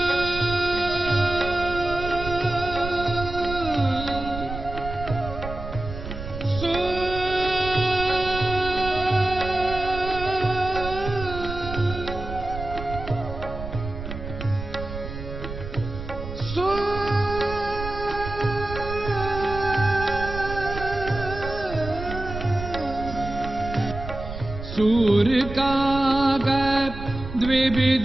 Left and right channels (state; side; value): noise; right; rumble, 9 dB below the sound